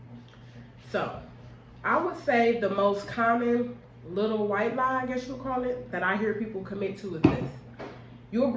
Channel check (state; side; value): identical; both; correlation 1.00